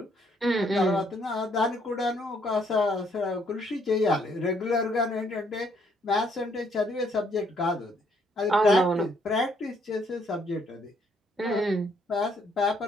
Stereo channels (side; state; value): both; normal; correlation 0.68